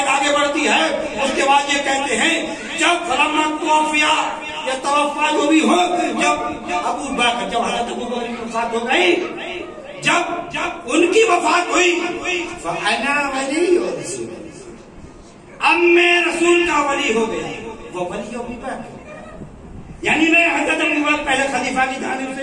آگے بڑھتی ہے. اس کے بعد یہ کہتے ہیں جب فلما توفیا یا توفا جو بھی ہو، جب ابو بکر، جب حضرت ابو بکر کی وفات ہو گئی، جب ان کی وفات ہوئی فانا ولی رسول اللہ، اب میں رسول کا ولی ہو گیا. وہ ولی ابو بکر، یعنی میں حضرت ابو بکر پہلے خلیفہ کی جانب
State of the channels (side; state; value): both; identical; correlation 1.00